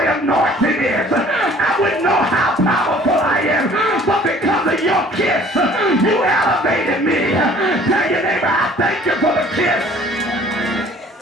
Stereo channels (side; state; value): both; normal; correlation 0.53